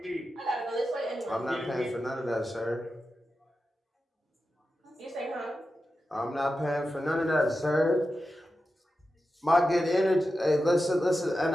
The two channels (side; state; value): both; normal; correlation 0.91